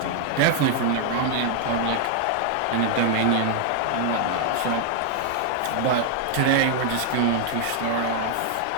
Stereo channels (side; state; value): both; different; correlation 0.00